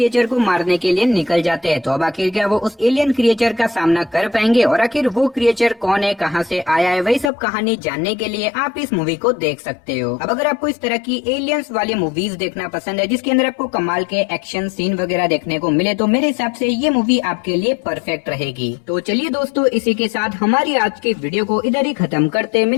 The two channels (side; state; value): right; drops out; at 7.3 s